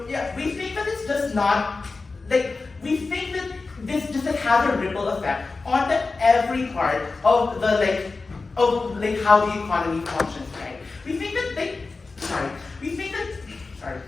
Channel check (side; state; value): right; quieter; 3.9 dB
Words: not we think that this just has a ripple effect onto every part of how the economy functions, right? We think